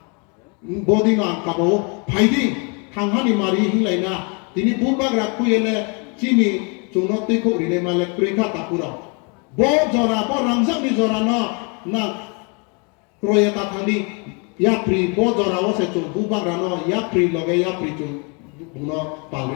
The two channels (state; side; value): quieter; right; 34.0 dB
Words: 보디노 안 까보 파이딩 강하니 마리 힐라이나 디니 부바그라 쿠엘레 지니 종노 띠코 리네 말레 크레카 타쿠로 bo jora bo rangsak ni jora no na kroya ta thandi ya pri bo jora wo se chu bu bang rano ya pri loge ya pri chu no